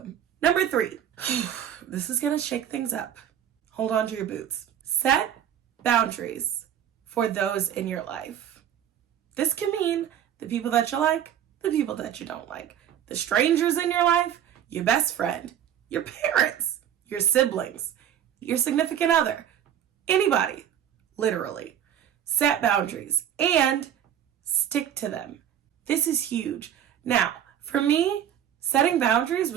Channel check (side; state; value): left; quieter; 9.8 dB